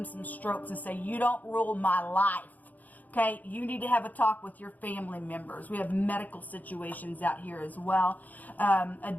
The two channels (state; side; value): late; right; 0.080 ms